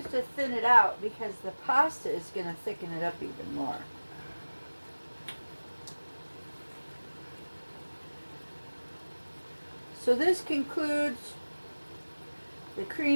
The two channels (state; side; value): inverted; both; correlation -1.00